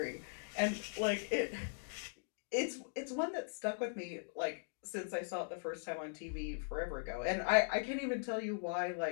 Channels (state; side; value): silent; right; digital silence